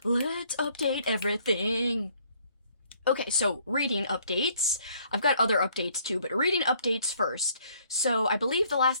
let's update everything. Okay, so reading updates. I've got other updates too, but reading updates first. So I believe the last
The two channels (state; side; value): inverted; both; correlation -0.63